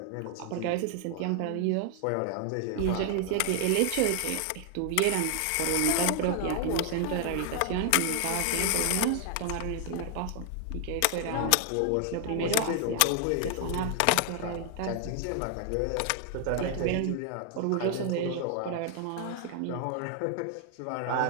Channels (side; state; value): both; different; correlation 0.00